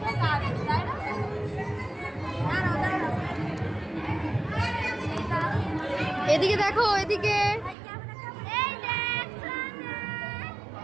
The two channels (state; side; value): drops out; left; at 7.8 s